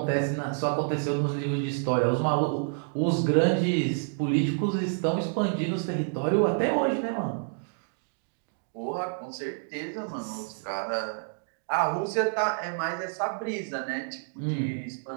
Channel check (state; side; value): silent; left; digital silence